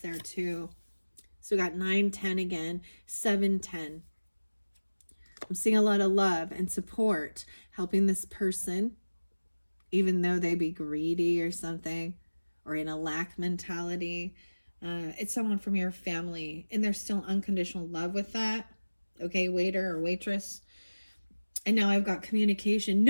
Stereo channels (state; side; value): inverted; both; correlation -1.00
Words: too. So we got 9, 10 again, 7, 10. I'm seeing a lot of love and support helping this person, even though they be greedy or something, or in a lack mentality. It's someone from your family, and there's still unconditional love with that. Okay, waiter or waitress. And now I've got communication.